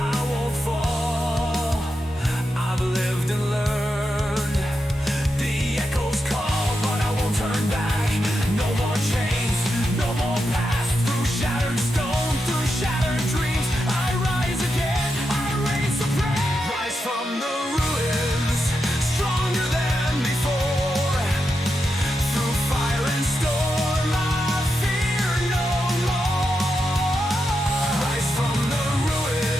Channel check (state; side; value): normal; both; correlation 0.87